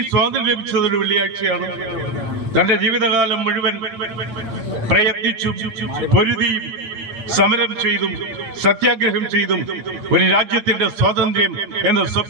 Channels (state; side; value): late; left; 9.3 ms